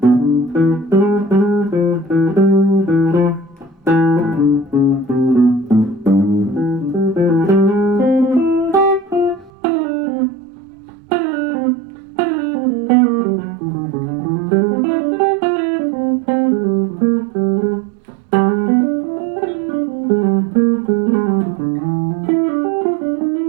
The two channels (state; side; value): drops out; left; at 9.5 s